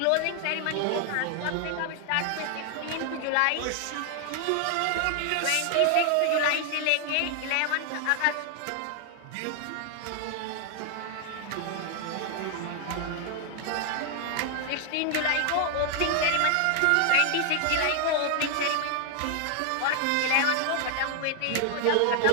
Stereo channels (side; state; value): both; different; correlation 0.00